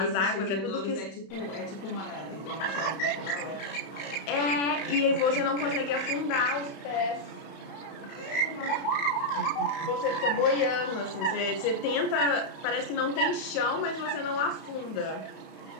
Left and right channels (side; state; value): right; late; 31 ms